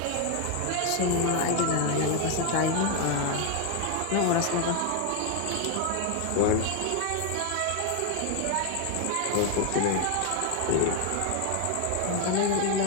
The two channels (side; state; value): both; different; correlation 0.01